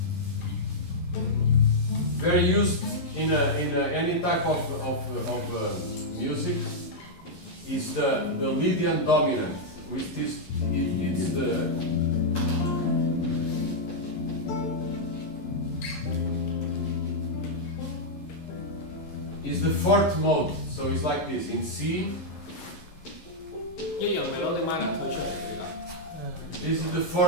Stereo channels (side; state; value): right; late; 11 ms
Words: very used in any type of music is the Lydian dominant, which is it's the fourth mode. So it's like this in C. This is the